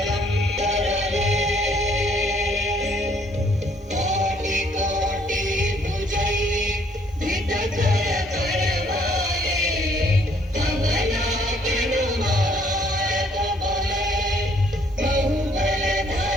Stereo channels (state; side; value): normal; both; correlation 0.64